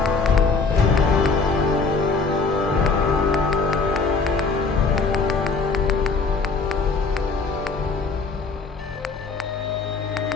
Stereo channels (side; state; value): right; quieter; 4.3 dB